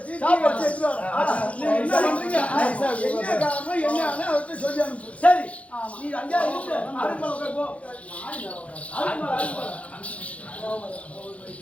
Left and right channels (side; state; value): right; late; 0.064 ms